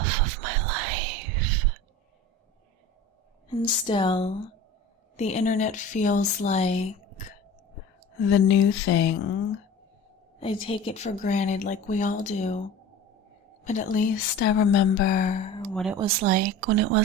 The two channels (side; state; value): both; normal; correlation 0.37